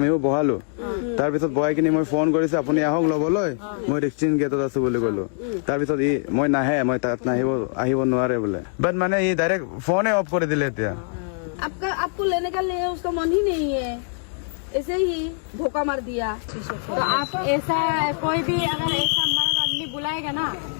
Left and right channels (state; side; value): silent; right; 63 dB below the other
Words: বহালো তাৰপিছত বহাই কিনে মই ফোন কৰিছো আপুনি আহক ল'বলৈ মই ৰিক্সিন গেটত আছো বুলি ক'লো তাৰপিছত মই নাহে মই তাত আহিব নোৱাৰে বোলে বাট মানে ই ডাইৰেক্ট ফোনে অফ কৰি দিলে এতিয়া आपको लेने का ले उसका मन ही नहीं है ऐसे ही धोखा मार दिया। तो आप ऐसा कोई भी अगर ऐसा मर्द आदमी बुलाएगा ना